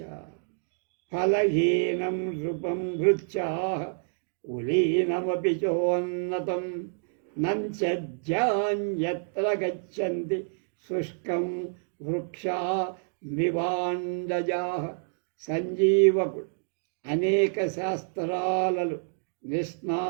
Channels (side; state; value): left; silent; digital silence